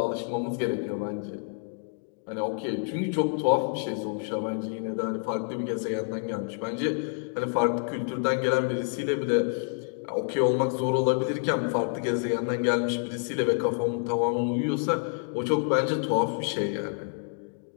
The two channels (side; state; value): right; silent; 59 dB below the other